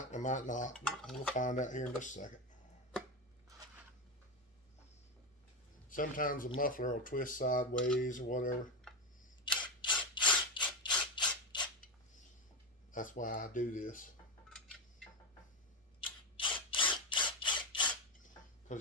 not. We'll find out here in just a second. Sometimes the muffler will twist sideways or whatever. That's why I do this.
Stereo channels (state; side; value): normal; both; correlation 0.13